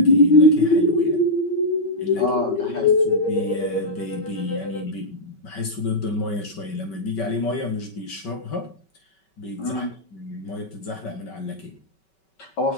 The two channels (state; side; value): late; right; 5.3 ms